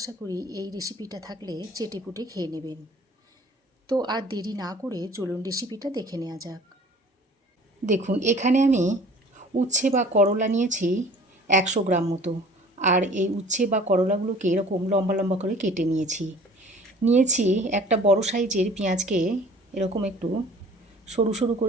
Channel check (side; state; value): both; normal; correlation 0.49